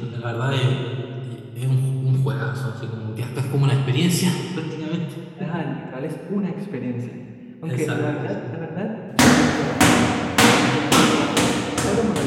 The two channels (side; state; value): both; identical; correlation 1.00